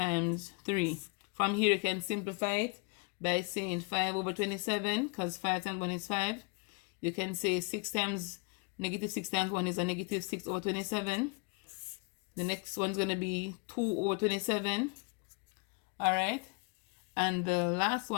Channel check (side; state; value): right; quieter; 32.3 dB